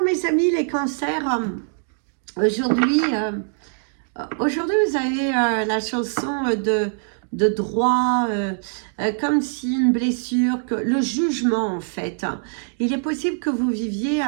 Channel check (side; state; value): left; silent; digital silence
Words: mes amis, les cancers, aujourd'hui, vous avez la chanson de droit, comme si une blessure, le jugement en fait. Il est possible que vous viviez